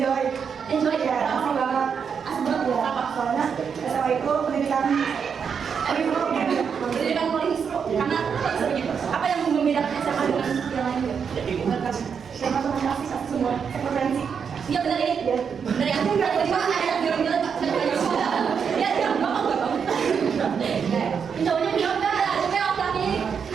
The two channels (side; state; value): left; quieter; 6.7 dB